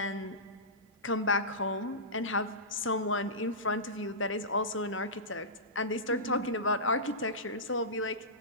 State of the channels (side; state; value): both; normal; correlation -0.19